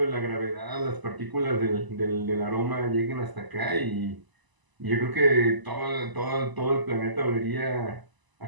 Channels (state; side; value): late; left; 1.0 ms